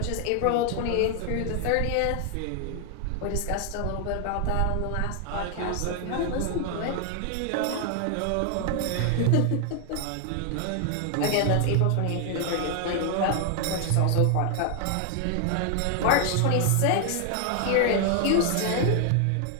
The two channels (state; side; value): different; both; correlation 0.00